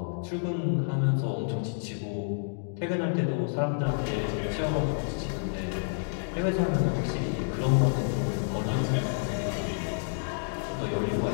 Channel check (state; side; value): silent; right; digital silence